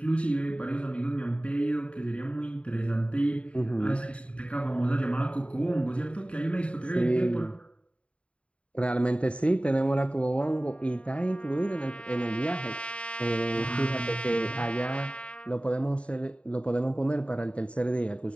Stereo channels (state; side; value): late; right; 0.061 ms